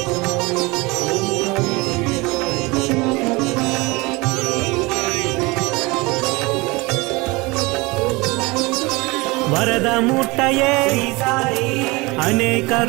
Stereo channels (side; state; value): left; quieter; 24.4 dB